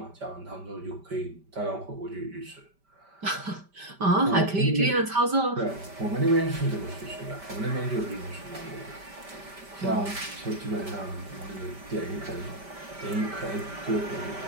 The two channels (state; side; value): late; left; 5.1 ms